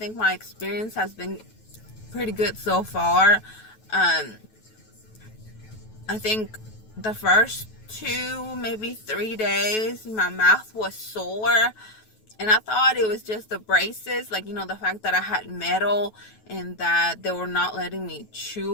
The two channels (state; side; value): late; right; 9.2 ms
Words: my experience has been pretty good so far. I think the first 2, maybe 3 days my mouth was sore, and I thought it was just the braces, like, the fact that I had metal and that they were not letting me